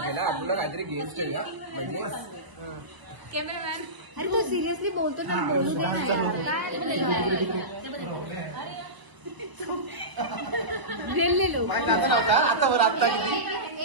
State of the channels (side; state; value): left; late; 1.0 ms